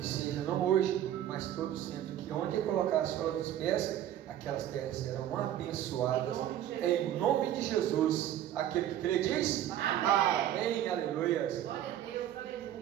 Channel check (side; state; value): left; quieter; 11.6 dB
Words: seja não hoje, mas todo sempre. Que onde colocar a sola dos pés, aquelas terras serão abençoadas. Em nome de Jesus. Aquele que crê diz: amém. Aleluia. Glória a Deus,